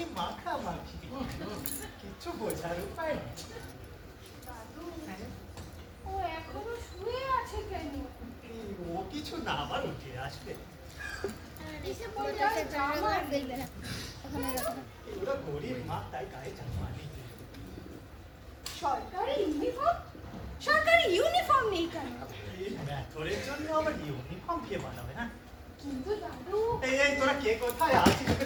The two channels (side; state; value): both; identical; correlation 1.00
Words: মাখামাখি। কিচ্ছু বোঝার উপায় নেই। দাদু, ও এখনো শুয়ে আছে কেন? ও কিছু না, আবার উঠে আসবে। এসে পড়ে আর জামা দেখবে না। ওরা গরিব মা, তাই গায়ে জামা নেই। সরকারি ইউনিফর্ম? সরকারি ইউনিফর্ম নেই কেন? এই ম্যাথরের জন্য আবার ইউনিফর্ম কে বানাবে না? কিন্তু দাদু, এই তোরা কে কোথায় আছিস?